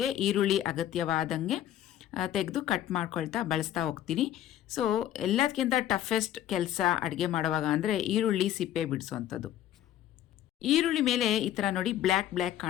ಈರುಳ್ಳಿ ಅಗತ್ಯವಾದಂಗೆ ತೆಗೆದು ಕಟ್ ಮಾಡ್ಕೊಳ್ತಾ ಬಳಸ್ತಾ ಹೋಗ್ತೀನಿ. ಸೊ ಎಲ್ಲದಕ್ಕಿಂತ ಟಫೆಸ್ಟ್ ಕೆಲಸ ಅಡುಗೆ ಮಾಡುವಾಗ ಅಂದರೆ ಈರುಳ್ಳಿ ಸಿಪ್ಪೆ ಬಿಡಿಸೋವಂಥದ್ದು. ಈರುಳ್ಳಿ ಮೇಲೆ ಈ ಥರ ನೋಡಿ ಬ್ಲ್ಯಾಕ್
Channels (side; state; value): right; quieter; 12.0 dB